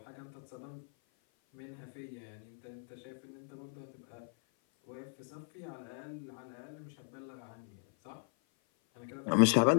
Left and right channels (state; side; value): silent; right; 53 dB below the other